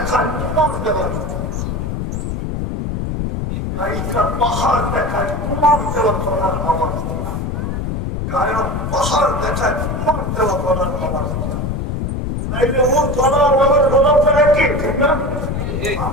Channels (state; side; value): noise; left; rumble, 2 dB below the sound